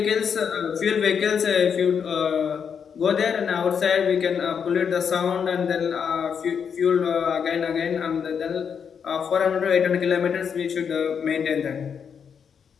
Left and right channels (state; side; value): quieter; right; 7.0 dB